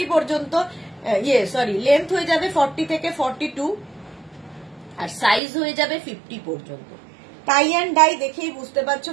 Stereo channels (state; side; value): drops out; left; at 5.4 s